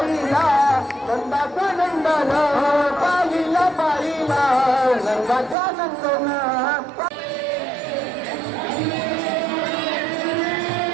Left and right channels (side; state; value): left; drops out; at 5.6 s